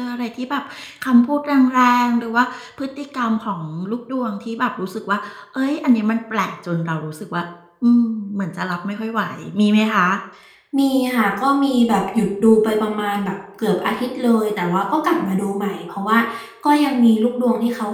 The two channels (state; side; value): identical; both; correlation 1.00